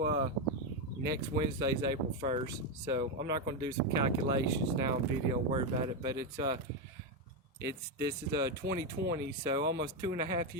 next Wednesday's April 1st, so I'm not going to do some calculations now on video and worry about it, but this is 2020, so almost 2.5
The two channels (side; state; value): both; normal; correlation 0.07